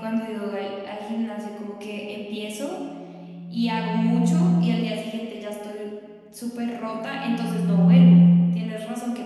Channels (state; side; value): identical; both; correlation 1.00